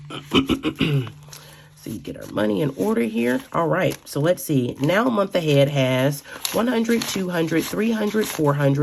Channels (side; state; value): both; identical; correlation 1.00